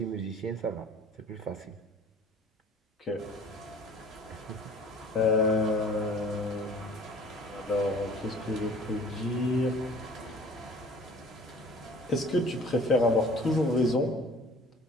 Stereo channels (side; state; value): both; normal; correlation 0.48